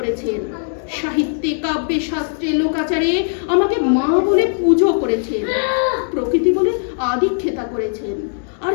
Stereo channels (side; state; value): right; silent; digital silence